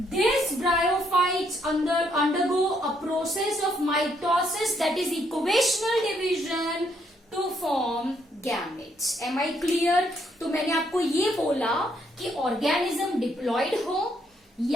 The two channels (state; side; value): normal; both; correlation 0.72